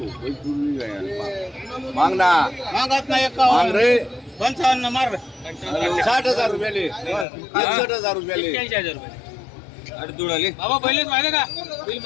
मागत नाही 55 मार 60,000 रुपयाले 61,000 रुपयाले 81,000 रुपये. अरे दुडाले बाबा पहिलेच माहिती का बिल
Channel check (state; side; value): drops out; right; at 7.2 s